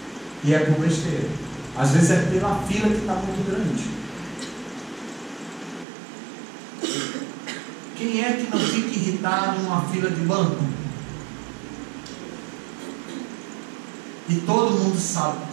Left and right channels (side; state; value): left; drops out; at 5.9 s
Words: E é por besteira. Às vezes é pela fila que está muito grande. Quem é que não fica irritado numa fila de banco? E todo mundo sabe que